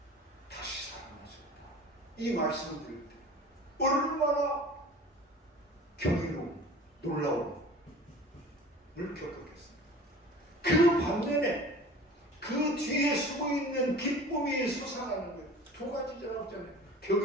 다시 살아나셨다. 이 말씀을 드릴 때 얼마나 경이로운 놀라움을 겪었겠습니까? 그 반면에 그 있는 기쁨이 솟아나는 거예요. 두 가지라고 했잖아요.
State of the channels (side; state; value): both; normal; correlation 0.42